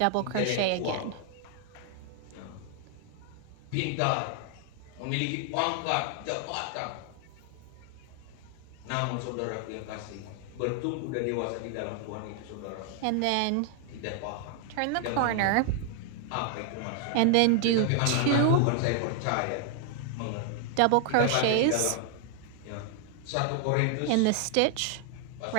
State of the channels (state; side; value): different; both; correlation 0.00